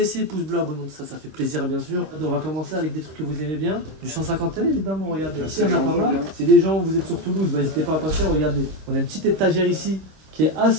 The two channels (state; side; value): late; left; 26 ms